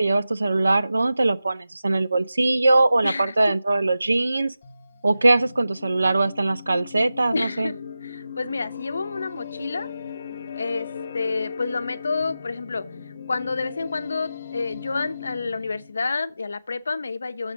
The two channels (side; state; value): both; inverted; correlation -0.92